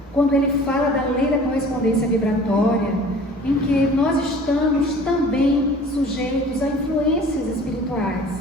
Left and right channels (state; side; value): normal; both; correlation 0.46